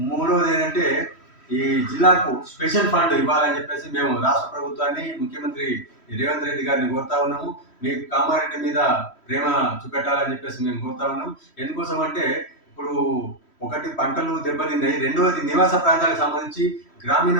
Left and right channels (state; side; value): late; right; 3.1 ms